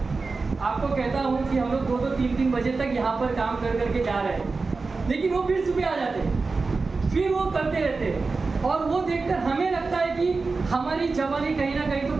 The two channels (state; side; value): quieter; left; 4.1 dB